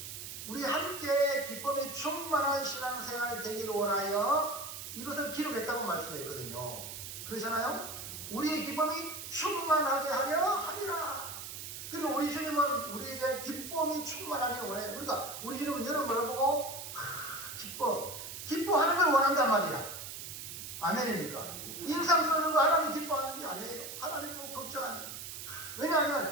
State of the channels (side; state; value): right; noise; hiss, 9 dB below the sound